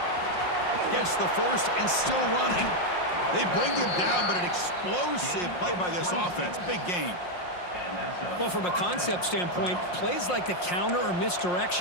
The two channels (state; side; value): late; right; 5.6 ms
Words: Gets the first and still running. They bring him down, but an explosive play by this offense. Big gain. Well, from a concept standpoint, plays like the counter or